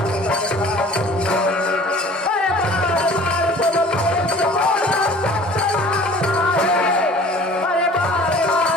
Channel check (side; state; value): both; normal; correlation 0.47